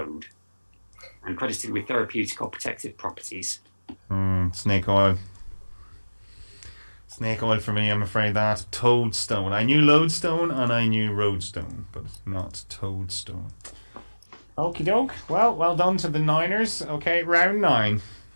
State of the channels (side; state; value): both; inverted; correlation -1.00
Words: and credited with therapeutic or protective properties. Snake oil. Snake oil for me, I'm afraid that. Toadstone. I knew lodestone and I knew roadstone, but not toadstone. Okie doke. Well done to the Niners. Okay, round 9